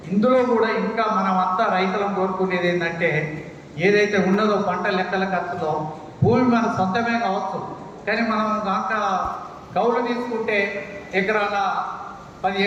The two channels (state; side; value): identical; both; correlation 1.00